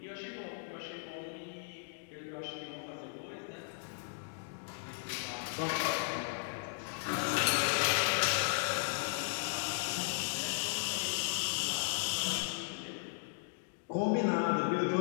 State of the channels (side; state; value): right; silent; digital silence